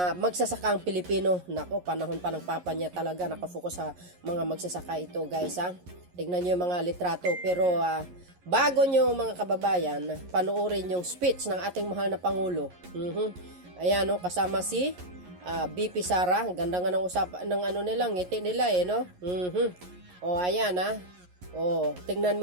magsasakang Pilipino. Nako, panahon pa ng papa niya talaga nakafocus sa mga magsasaka ito, guys, ha. Tignan nyo yung mga litrato. Pero bago nyo mga kababayan, panoorin yung speech ng ating mahal na Pangulo. Ayan, no, kasama si BP Sara. Ganda nga ng usapan ng nila, ngiti nila, no? O, ayan, ha. O, tingnan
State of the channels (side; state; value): left; late; 11 ms